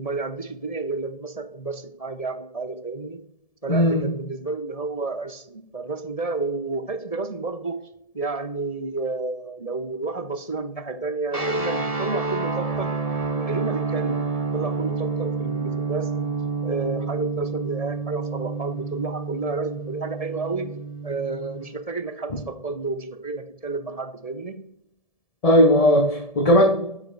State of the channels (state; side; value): late; right; 1.7 ms